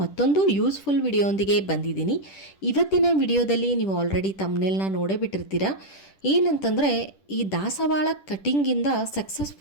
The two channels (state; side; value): late; right; 10 ms